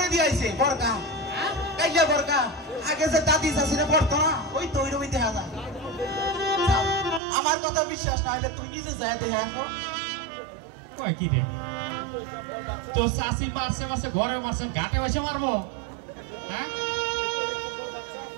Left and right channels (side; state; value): left; drops out; at 7.2 s